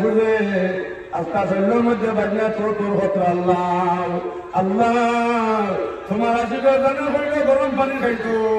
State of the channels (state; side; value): identical; both; correlation 1.00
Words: বুঝে আত্মা শৈলের মধ্যে বাজনায় তোর হতো আল্লাহ আল্লাহ তোমার আশিকের জানা হইলে গরম পানি খাইতো